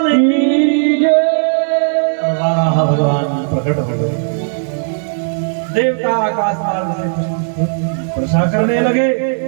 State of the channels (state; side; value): silent; left; digital silence